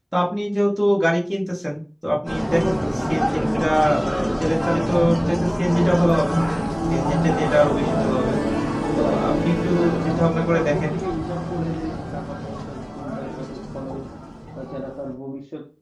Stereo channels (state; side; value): identical; both; correlation 1.00